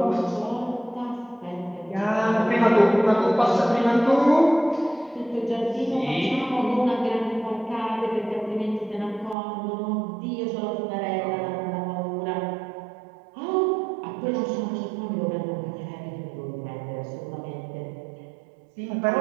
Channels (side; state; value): left; drops out; at 9.3 s